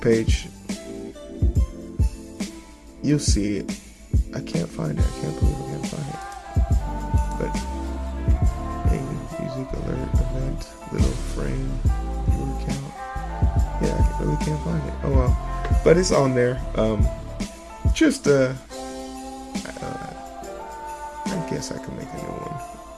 you'll see it. I can't find it. I can't believe I can't find it. But hey, music alert event, little frame, viewer count. Yeah, I really can't find it. Oh well, but it's on there. Just I guess I can make a new one.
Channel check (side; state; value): both; identical; correlation 1.00